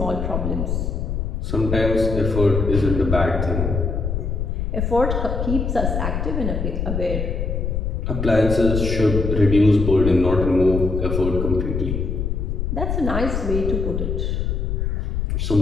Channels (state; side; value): noise; left; rumble, 1 dB below the sound